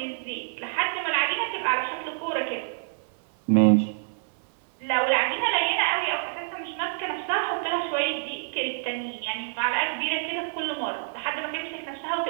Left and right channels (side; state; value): left; silent; 60 dB below the other